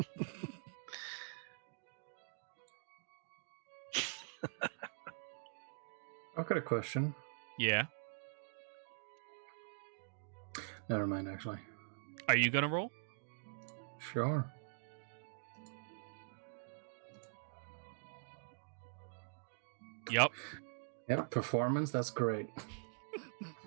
I've got a question. Yeah. Never mind, actually. Are you gonna roll? Sure. Yep. Yep, performance, that's great.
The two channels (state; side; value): silent; left; digital silence